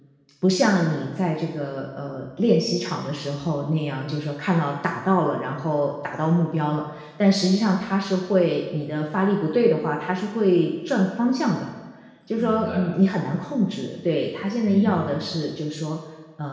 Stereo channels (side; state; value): both; identical; correlation 1.00